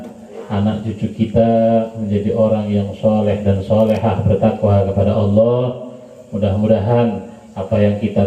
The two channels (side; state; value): both; identical; correlation 1.00